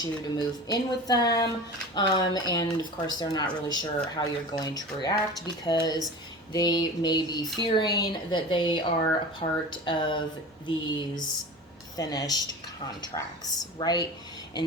you to move in with them. And of course, they're not really sure how you're going to react because they may be fearing that they are a part of these finished contracts, right?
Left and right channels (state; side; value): normal; both; correlation 0.34